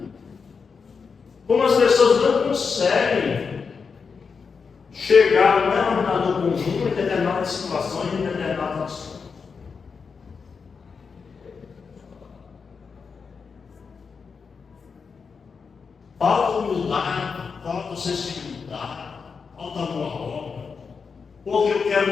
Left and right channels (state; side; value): quieter; right; 5.5 dB